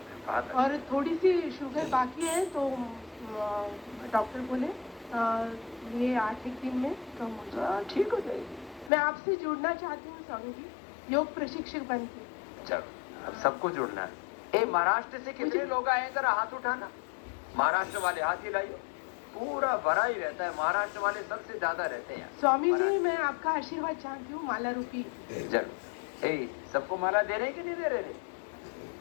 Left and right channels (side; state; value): right; drops out; at 8.9 s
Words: बात है। और थोड़ी सी शुगर बाकी है, तो डॉक्टर बोले ये 8-1 दिन में कम हो जाए, ठीक हो जाएगी। मैं आपसे जुड़ना चाहती हूँ स्वामी जी, योग प्रशिक्षक बन के। चलो, अब सबको जुड़ना है। महाराष्ट्र से कितने लोग आए हैं, जरा हाथ उठाना। महाराष्ट्र वाले हाथ हिलाइए। पूरा भरा ही रहता है, महाराष्ट्र वाले सबसे ज्यादा रहते हैं। स्वामी जी, मैं आपका आशीर्वाद चाहती हूँ, माला रूपी। जरूर। सबको माला दे रहे कि नहीं दे रहे?